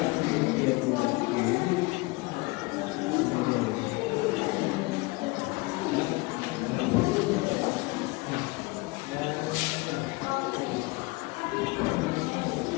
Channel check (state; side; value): quieter; right; 24.9 dB